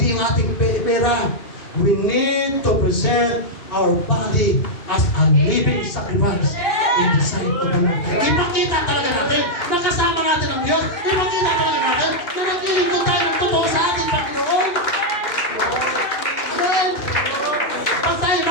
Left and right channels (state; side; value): late; right; 2.5 ms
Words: yung ating pera. We need to present our body as a living sacrifice in the sight of the Lord. Ipakita talaga natin na kasama natin ang Diyos. Ipakita talaga natin na naglilingkod tayo ng totoo sa ating Panginoon. Amen. Pag tayo